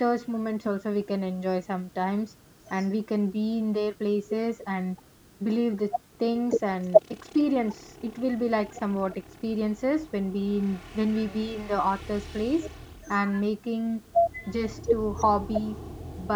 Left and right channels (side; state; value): both; identical; correlation 1.00